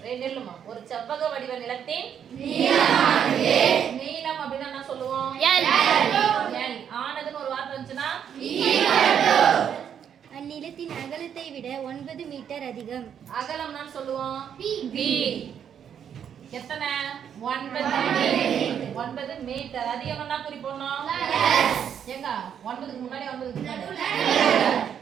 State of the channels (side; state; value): left; quieter; 8.5 dB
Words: ஒரு செவ்வக வடிவ நிலத்தின் நீளம் அப்படின்னா என்ன சொல்லுவோம்? L. ஆனதுன்னு ஒரு வார்த்தை வந்துச்சுன்னா அந்நிலத்தின் அகலத்தை விட 9 மீட்டர் அதிகம். அகலம் நான் சொல்லுவோம் B. எத்தனை? 9 மீட்டர். அதிகம்னா குறிப்போம் எங்க 9க்கு முன்னாடி 9க்கு முன்னாடி.